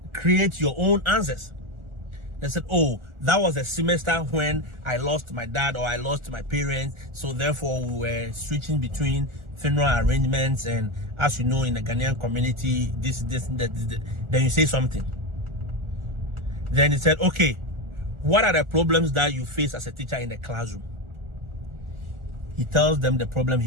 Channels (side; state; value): left; late; 1.4 ms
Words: create your own answers. They said, oh, that was a semester when I lost my dad or I lost my parents. So therefore we were switching between funeral arrangements, and as you know, in the Ghanaian community, that. Then you say something. Then he said, okay, what are the problems that you face as a teacher in the classroom? He tells them the problem